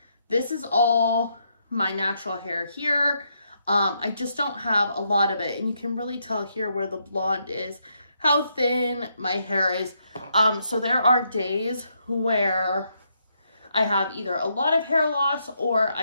This is all my natural hair here. I just don't have a lot of it, and you can really tell here where the blonde is, how thin my hair is. So there are days where I have either a lot of hair loss or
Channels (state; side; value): inverted; both; correlation -0.77